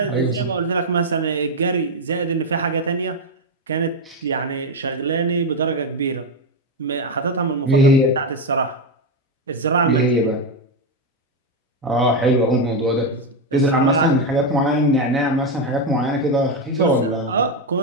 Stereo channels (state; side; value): normal; both; correlation 0.08